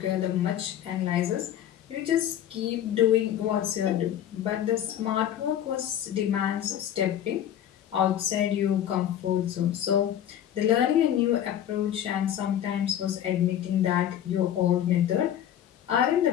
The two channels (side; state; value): right; quieter; 10.6 dB